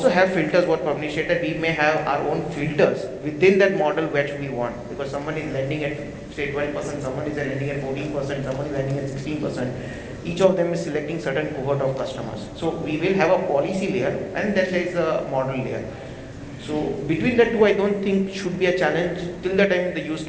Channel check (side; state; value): both; identical; correlation 1.00